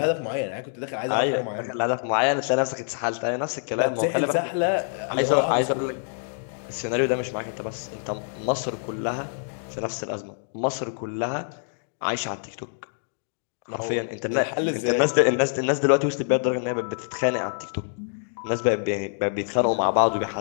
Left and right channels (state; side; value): silent; right; digital silence